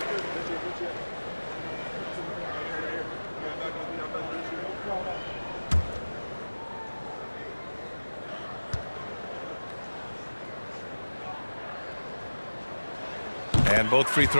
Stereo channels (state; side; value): inverted; both; correlation -1.00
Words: And both free